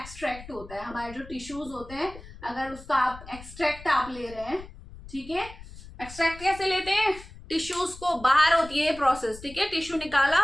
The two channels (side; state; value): left; noise; rumble, 17 dB below the sound